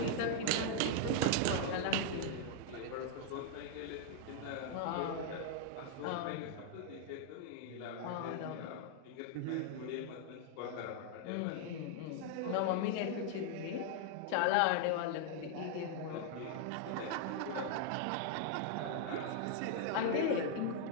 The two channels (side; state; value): both; different; correlation 0.00